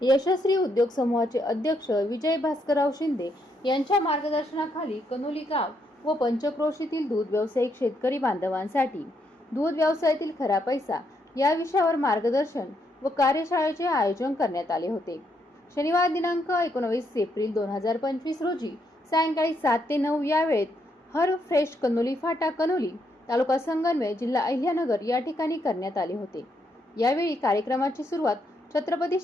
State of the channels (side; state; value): both; normal; correlation 0.76